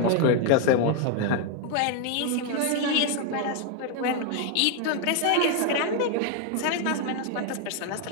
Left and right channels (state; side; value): different; both; correlation 0.01